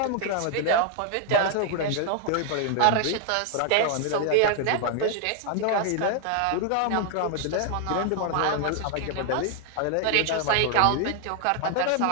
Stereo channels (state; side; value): different; both; correlation 0.00